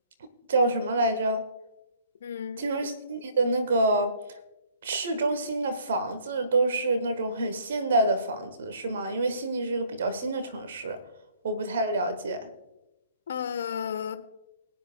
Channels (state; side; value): inverted; both; correlation -0.60